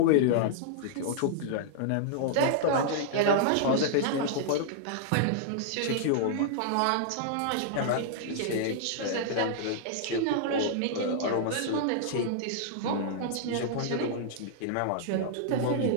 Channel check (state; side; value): different; both; correlation -0.01